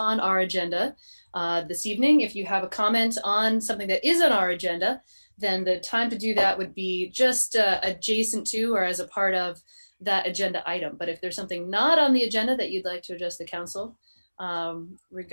our agenda this evening. If you have a comment on something that is on our agenda, then the time to do that would be just adjacent to or as a part of that agenda item. But if there's something not on the agenda that you'd like to address the council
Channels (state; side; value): inverted; both; correlation -1.00